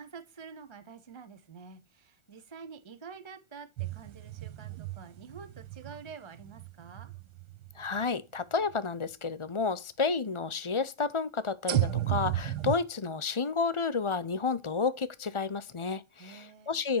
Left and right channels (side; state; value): right; late; 1.4 ms